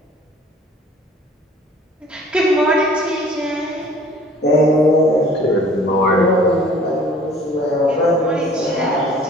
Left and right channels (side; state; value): both; normal; correlation 0.51